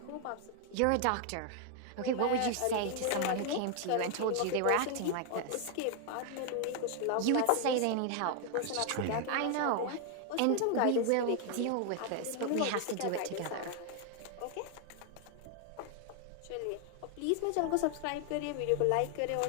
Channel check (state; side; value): different; both; correlation 0.00